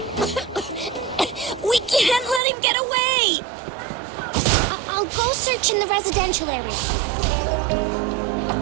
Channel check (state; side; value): drops out; left; at 2.4 s